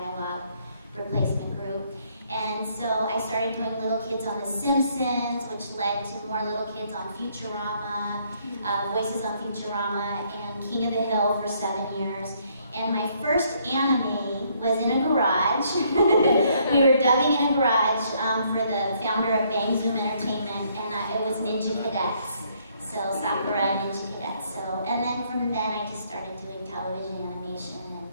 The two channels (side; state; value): both; inverted; correlation -0.68